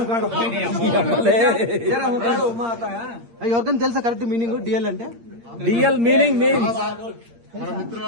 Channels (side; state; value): left; late; 8.6 ms